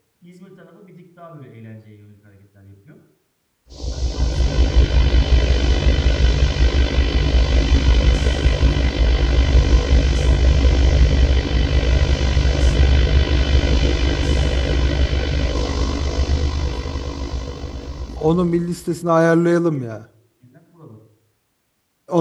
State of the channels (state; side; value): identical; both; correlation 1.00